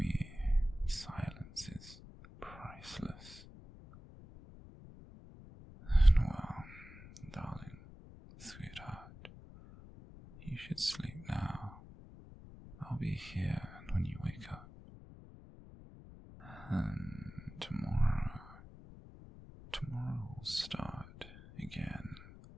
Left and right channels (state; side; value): noise; left; rumble, 17 dB below the sound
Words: silence is priceless. And well, darling, sweetheart, you should sleep now. I'll be here when you